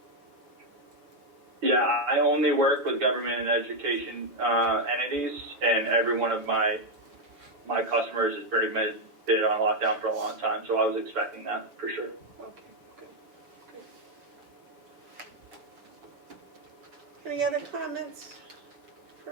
Yeah, I only work with government and education entities, and every one of my customers has pretty much been on lockdown for a long time, so I was expecting that for sure. Okay, good. Any other comments for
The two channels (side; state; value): left; late; 7.5 ms